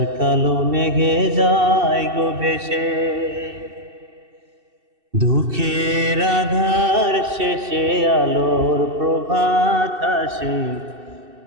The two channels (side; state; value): left; late; 2.7 ms